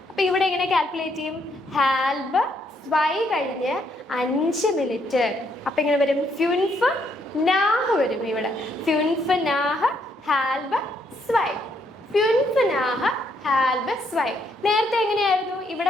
അപ്പൊ ഇവിടെ എങ്ങനെ കാൽക്കുലേറ്റ് ചെയ്യും? ഹാൽബ് സ്വൈ കഴിഞ്ഞ് 5 മിനിറ്റ്. അപ്പൊ എങ്ങനെ വരും? ഫ്യൂൻഫ് നാഹ് വരും. ഇവിടെ ഫ്യൂൻഫ് നാഹ് ഹാൽബ് സ്വൈ, ഫ്യൂൻഫ് നാഹ് ഹാൽബ് സ്വൈ. നേരത്തെ എങ്ങനെയായിരുന്നു?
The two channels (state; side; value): normal; both; correlation 0.73